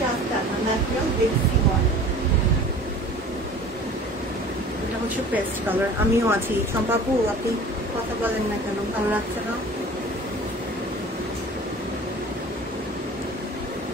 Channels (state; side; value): normal; both; correlation 0.43